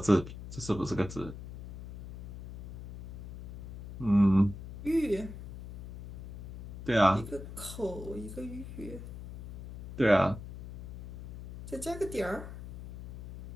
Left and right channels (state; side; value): noise; left; hum, 12 dB below the sound